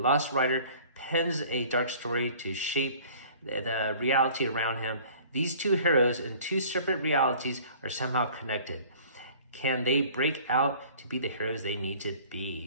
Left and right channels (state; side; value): inverted; both; correlation -0.49